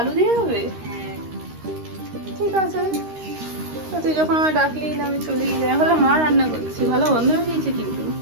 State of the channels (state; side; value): late; left; 13 ms